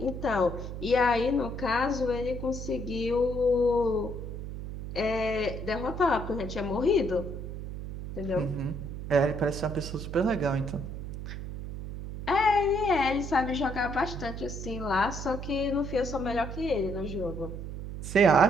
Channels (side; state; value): right; noise; hum, 8 dB below the sound